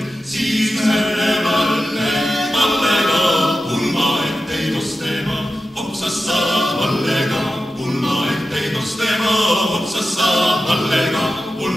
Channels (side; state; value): both; normal; correlation 0.92